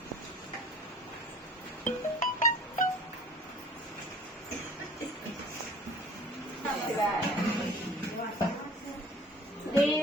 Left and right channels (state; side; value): normal; both; correlation 0.47